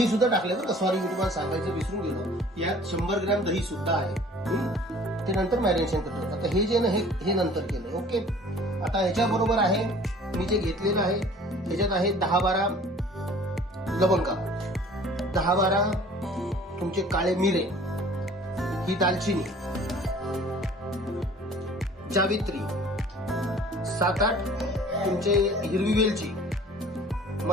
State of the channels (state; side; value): normal; both; correlation 0.50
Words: सुद्धा टाकलं बरं, सॉरी मी तुम्हाला सांगायचं विसरून गेलो. यात 100 ग्रॅम दही सुद्धा आहे. ते नंतर मॅरिनेशन करतो. आता हे जे ना हे नंतर केलं. ओके, आता ह्याच्याबरोबर आहे मी जे घेतलेलं आहे त्याच्यात आहे 10-12 लवंगा, 10-12 तुमचे काळे मिरे, ही दालचिनी, जावित्री, 7-8 तुमचे हिरवी वेलची,